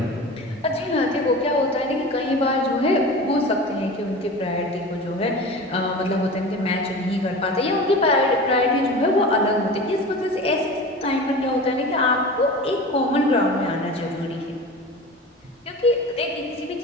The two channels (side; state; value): both; normal; correlation 0.34